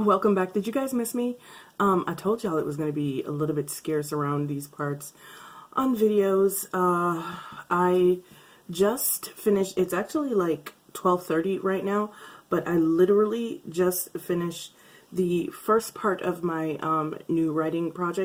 back. Did you guys miss me? I told y'all it was going to be a little bit scarce around these parts on videos. I just finished, it's actually like 12:30 right now, but I literally just finished the first part of my new writing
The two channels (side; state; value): both; identical; correlation 1.00